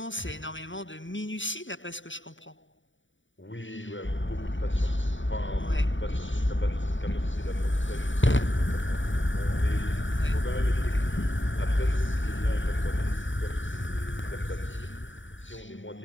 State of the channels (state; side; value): late; right; 0.55 ms